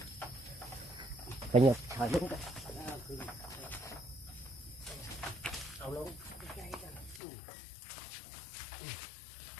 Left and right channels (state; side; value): drops out; right; at 7.2 s